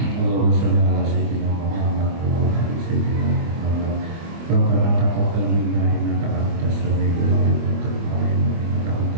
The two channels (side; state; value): left; late; 24 ms